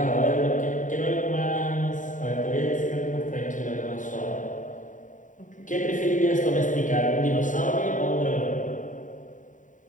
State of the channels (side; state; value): right; late; 0.37 ms